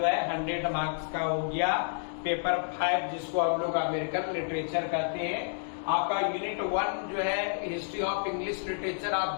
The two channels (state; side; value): silent; right; digital silence